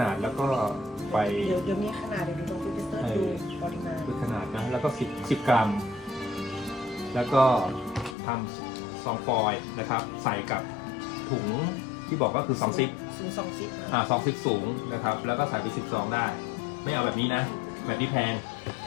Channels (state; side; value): drops out; right; at 8.2 s